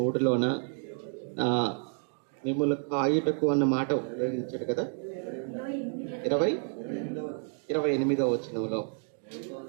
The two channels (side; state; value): left; silent; 58 dB below the other